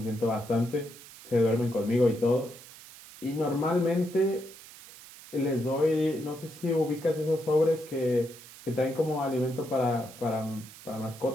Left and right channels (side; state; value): right; noise; hiss, 18 dB below the sound